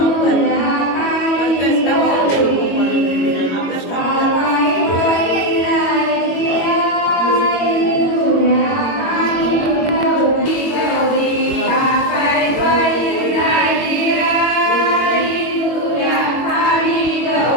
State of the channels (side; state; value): right; late; 21 ms